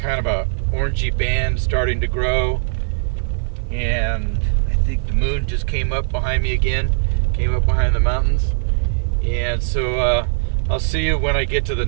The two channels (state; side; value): silent; left; 58 dB below the other